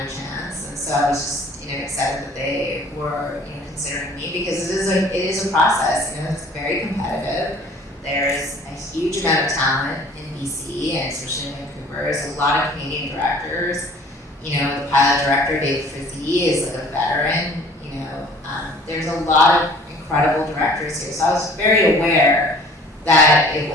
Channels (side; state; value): both; normal; correlation 0.51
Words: a chance, and so I was just, excited that they were, considering me, because it is a process. It's very competitive. there's a huge amount of talent in BC and especially in Vancouver. There's a lot of Canadian directors. You know, the pilot director, Dave Frizzy, is like a veteran. You know, there's a lot of incredible directors here. So I was very aware that it